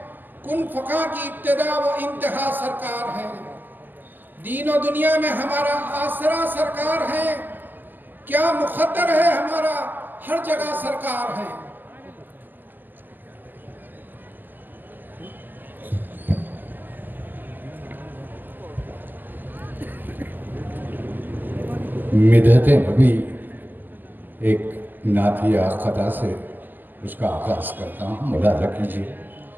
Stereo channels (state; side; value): late; left; 0.092 ms